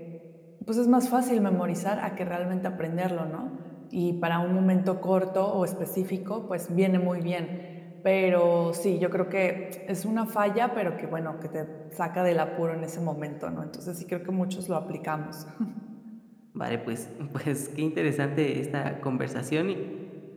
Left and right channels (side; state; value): both; identical; correlation 1.00